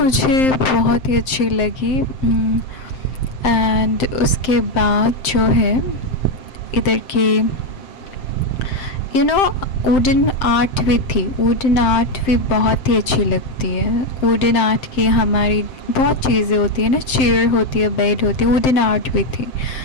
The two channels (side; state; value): right; late; 7.7 ms